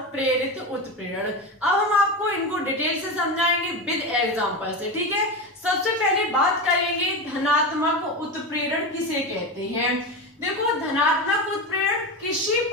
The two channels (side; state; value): both; normal; correlation 0.20